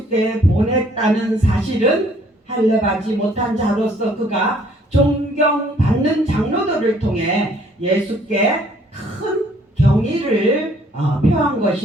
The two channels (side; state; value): both; normal; correlation 0.61